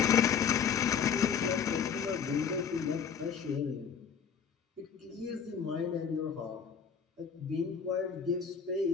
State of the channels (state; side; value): quieter; right; 6.9 dB